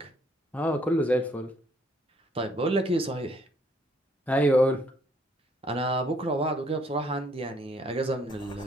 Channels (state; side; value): normal; both; correlation 0.66